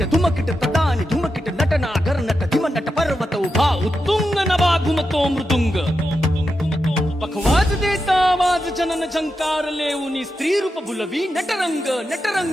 धुमकिट तदानी धुमकिट नटना nut धिम nut पर्वत उभा उत्तुंग नभा घुमतो मृदुंग पखवाज देता आवाज जनन झंकार लेऊनी स्त्री रूप बुलवी नटरंग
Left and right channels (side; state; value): both; normal; correlation 0.88